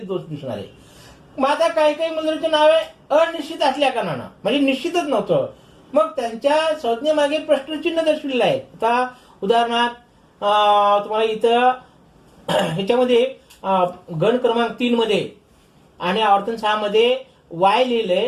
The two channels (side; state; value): both; identical; correlation 1.00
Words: दिसणार आहे. मग आता काही काही मुद्रांची नावे अनिश्चित असल्या कारणानं म्हणजे निश्चितच नव्हतं, मग त्यांच्या संज्ञेमागे प्रश्नचिन्ह दर्शविलेलं आहे. आता उदाहरणार्थ तुम्हाला इथं ह्याच्यामध्ये गण क्रमांक 3 मध्ये आणि आवर्तन 6 मध्ये वाय